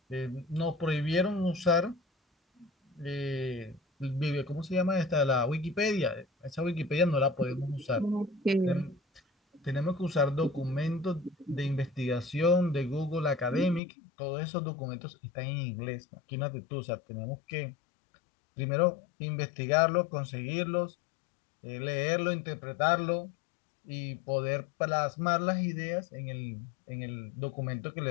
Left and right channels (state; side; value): drops out; right; at 13.8 s